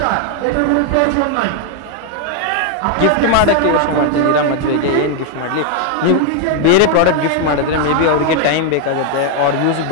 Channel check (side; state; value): both; different; correlation 0.00